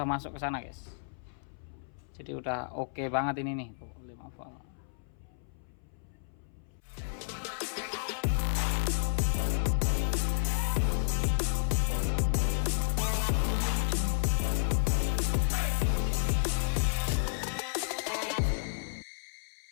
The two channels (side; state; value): right; silent; 57 dB below the other